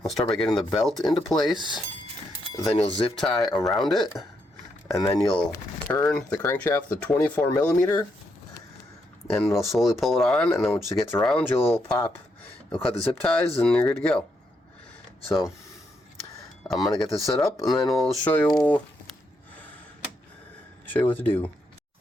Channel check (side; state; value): both; normal; correlation 0.79